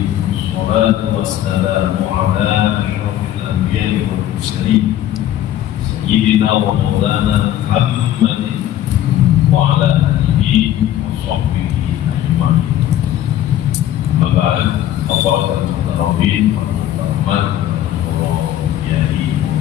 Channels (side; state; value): right; quieter; 12.1 dB